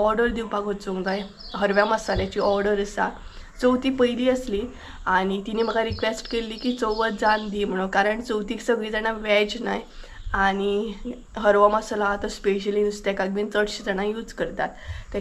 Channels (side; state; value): both; identical; correlation 1.00